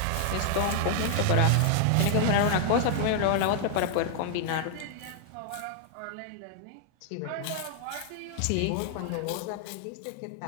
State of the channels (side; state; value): both; different; correlation 0.00